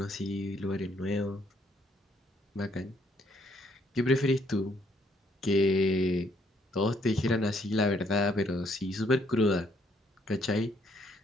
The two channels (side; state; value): both; normal; correlation 0.69